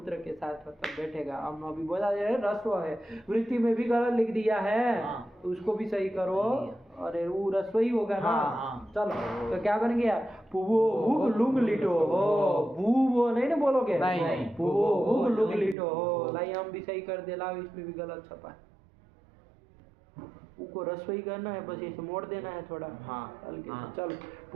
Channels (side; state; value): left; drops out; at 15.8 s